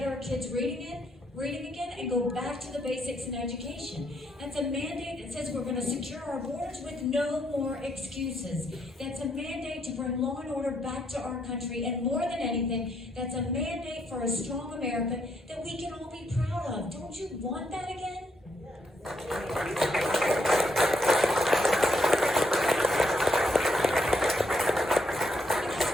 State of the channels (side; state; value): both; normal; correlation 0.75